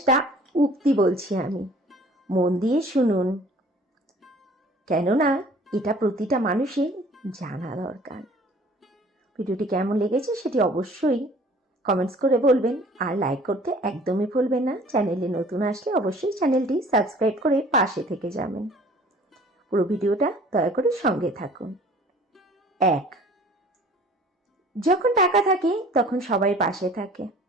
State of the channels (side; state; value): both; normal; correlation 0.50